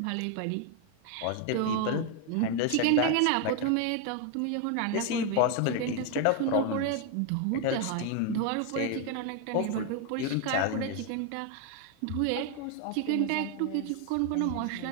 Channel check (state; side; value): different; both; correlation 0.01